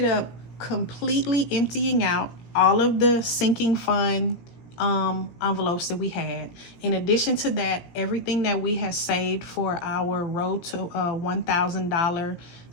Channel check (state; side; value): late; right; 17 ms